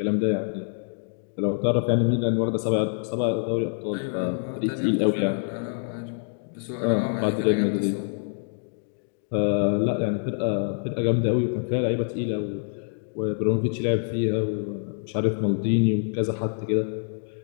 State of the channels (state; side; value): silent; right; digital silence